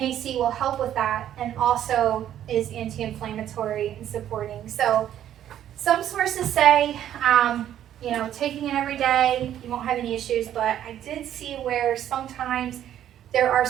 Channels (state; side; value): quieter; left; 11.1 dB